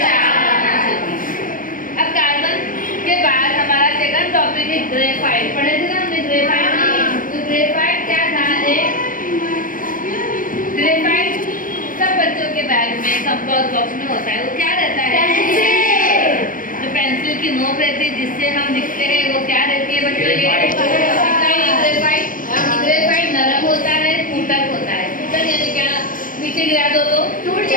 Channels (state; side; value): late; right; 0.40 ms